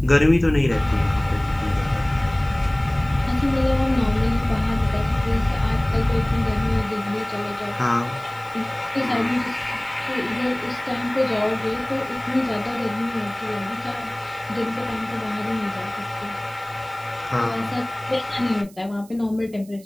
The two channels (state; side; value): noise; right; hiss, 25 dB below the sound